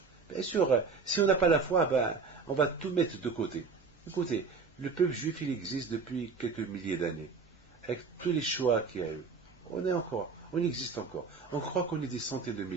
Bien sûr, si on n'a pas la foi, ben, on va tout mettre de côté. Écoutez, le peuple juif, il existe depuis quelques milliers d'années, avec tous les choix qu'il y a eu. On existe encore. On croit qu'on est des centaines de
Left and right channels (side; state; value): left; quieter; 4.7 dB